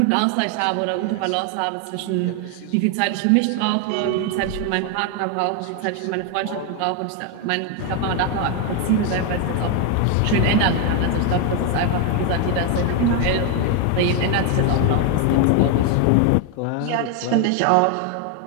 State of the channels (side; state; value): both; different; correlation 0.01